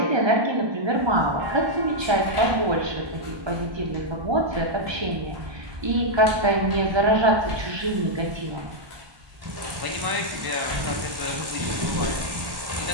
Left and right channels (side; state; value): left; late; 1.1 ms